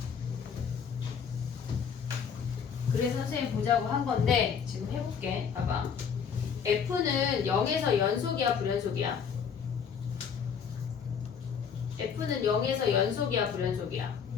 그래서 선생님 보자고 한 건데 지금 해볼게. 봐봐. F는 0에서 연속이야 불연속이야? F는 0에서 연속이야 불연속이야?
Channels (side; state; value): right; quieter; 6.9 dB